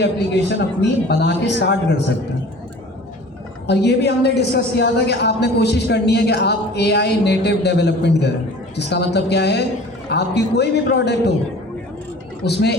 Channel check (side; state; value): both; normal; correlation 0.44